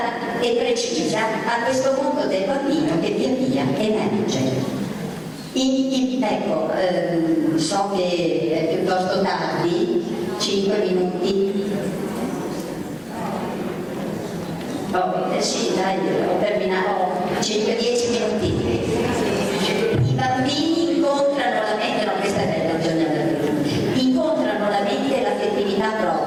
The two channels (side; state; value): both; identical; correlation 1.00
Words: e precisa a questo mondo del bambino che via via emerge. Ecco, so che è piuttosto tardi, 5 minuti. Sì, dai, ho terminato 5-10 minuti. I bambini incontrano la mente, no, questa è bella, bisogna incontrano la mente e l'affettività